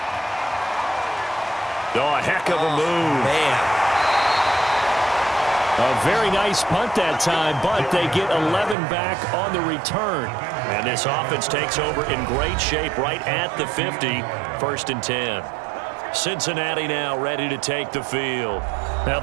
Oh, a heck of a move. Man. A very nice punt that time, but they get 11 back on the return. And this offense takes over in great shape right at the 50, 1st and 10. Cincinnati now ready to take the field. Now,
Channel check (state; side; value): drops out; left; at 8.8 s